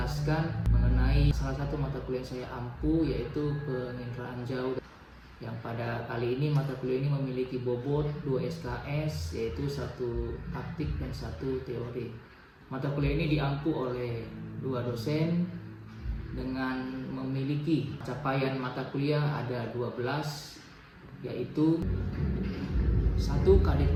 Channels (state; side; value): identical; both; correlation 1.00